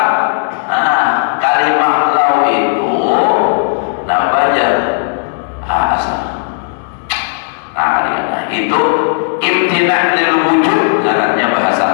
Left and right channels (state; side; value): silent; right; digital silence